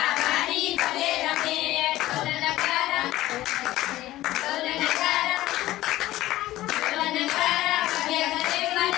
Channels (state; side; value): quieter; right; 15.8 dB